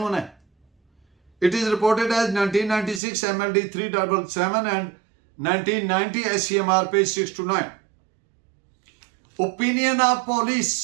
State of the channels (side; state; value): left; drops out; at 3.0 s